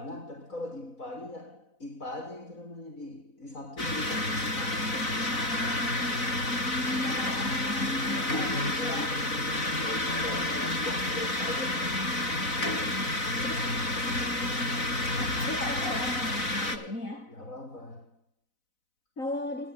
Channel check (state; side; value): late; right; 4.0 ms